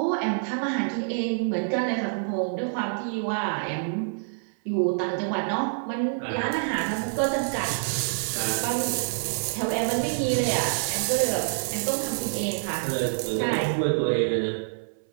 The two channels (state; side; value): silent; left; 60 dB below the other